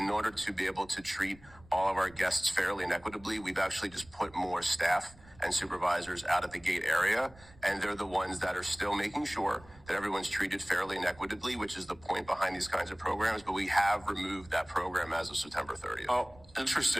order to be able to treat all of our guests fairly and equitably, we've actually just put more staff and supervisors out at the gate area. And they're the ones that are still making sure that everyone's treated fairly and equitably, which is the point behind these kinds of programs. But we have removed that program as of September 30th. Oh,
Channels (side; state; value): right; noise; rumble, 24 dB below the sound